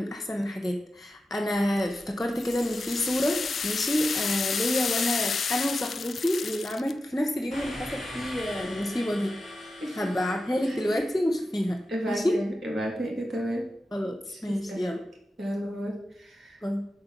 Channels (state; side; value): normal; both; correlation 0.91